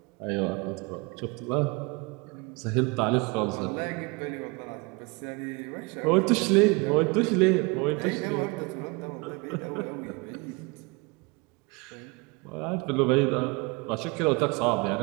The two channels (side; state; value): left; quieter; 27.9 dB